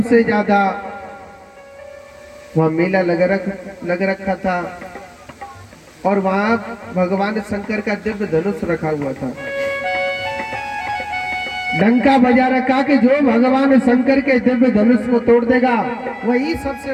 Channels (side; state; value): both; identical; correlation 1.00